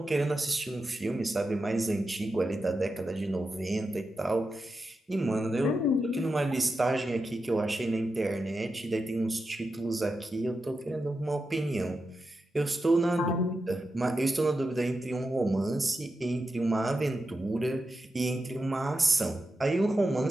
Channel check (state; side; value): normal; both; correlation 0.89